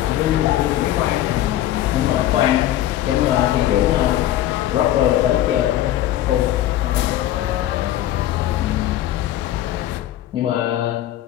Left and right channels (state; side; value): quieter; right; 13.2 dB